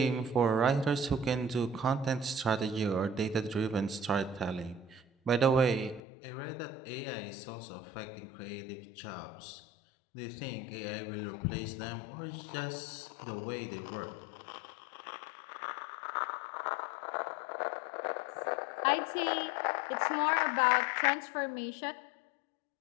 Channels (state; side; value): drops out; right; at 6.0 s